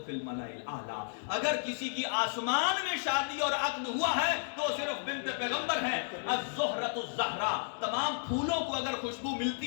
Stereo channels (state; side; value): silent; right; digital silence